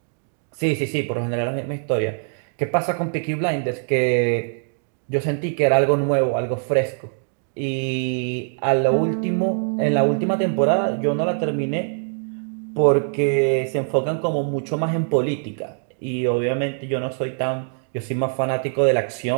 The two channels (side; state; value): left; silent; 64 dB below the other